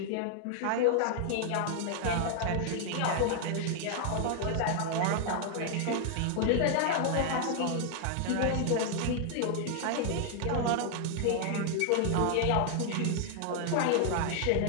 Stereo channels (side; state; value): both; different; correlation 0.00